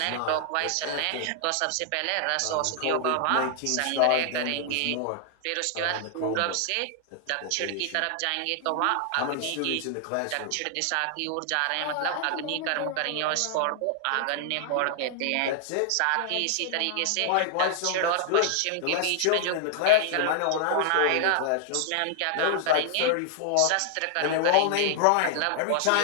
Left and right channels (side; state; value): both; different; correlation -0.01